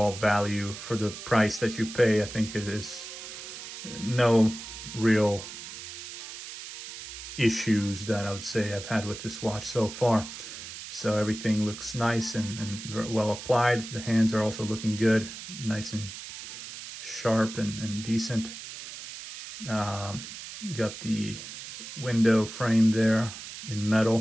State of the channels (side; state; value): right; noise; hiss, 11 dB below the sound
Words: value, for the price that you pay, I think it is no real issues that I would say I've had with this watch so far. So everything looks nice and very well applied. The hands are also looking good, nice and sharp and decent. Got the window frame there in